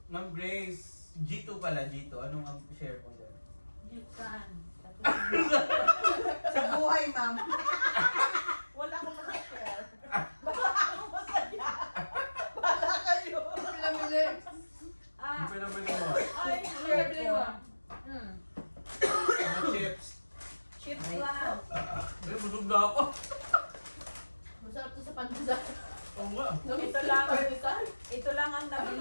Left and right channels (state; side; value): inverted; both; correlation -1.00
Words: Ma'am Grace, G2 pala, G2. Anong ang share mo dyan? Yukan. Sa buhay, ma'am. Wala akong masashare. Pinamili. Hindi pa naman mo. Ay, Pinamili mo. Mga chips. Chips lang. Ay, busog na ako. Masarap to sa pandesal. Oo nga. ito lang. Pandesal. Ito lang ang